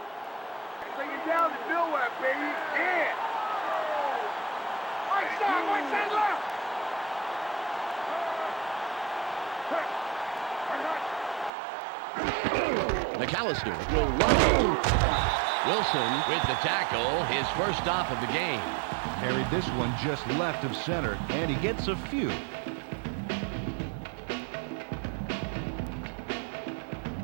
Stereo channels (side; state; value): left; drops out; at 11.5 s